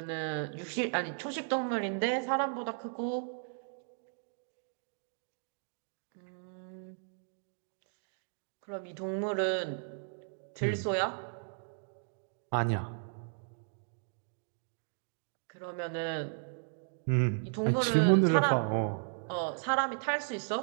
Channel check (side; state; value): left; silent; digital silence